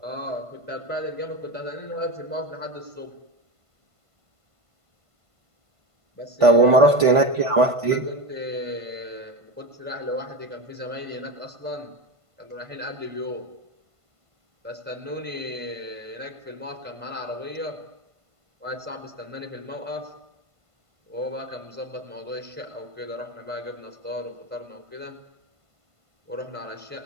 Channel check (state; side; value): late; left; 1.5 ms